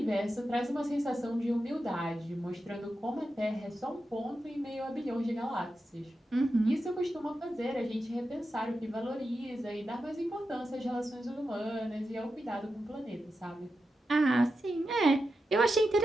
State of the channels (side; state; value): both; normal; correlation 0.89